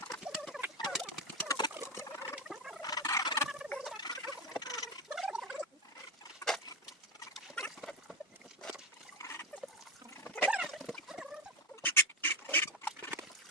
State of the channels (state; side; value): normal; both; correlation 0.14